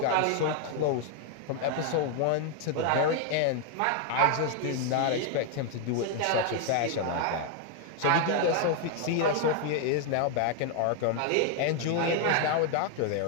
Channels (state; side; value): different; both; correlation 0.00